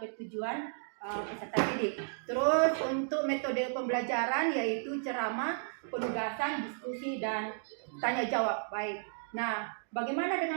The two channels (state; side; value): silent; left; digital silence